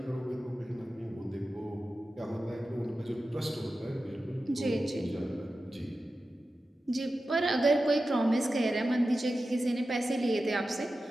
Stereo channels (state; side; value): normal; both; correlation 0.93